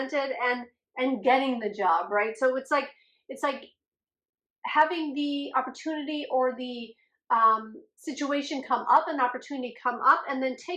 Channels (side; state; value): both; identical; correlation 1.00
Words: and getting the job, right? So it's like having the opportunity or the situation come up, an opportunity come up, and then